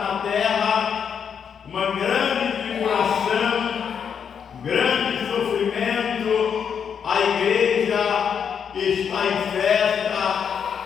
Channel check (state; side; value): quieter; right; 7.4 dB